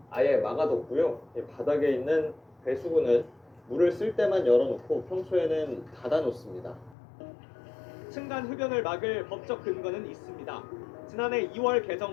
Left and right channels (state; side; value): drops out; right; at 7.0 s